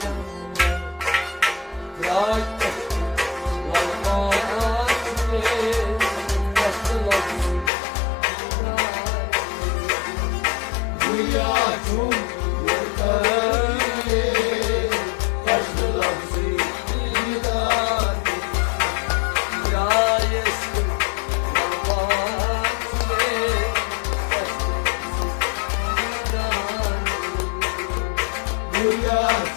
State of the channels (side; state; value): right; drops out; at 7.7 s